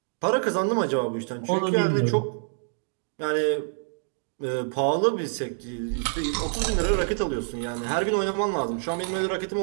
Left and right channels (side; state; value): left; silent; digital silence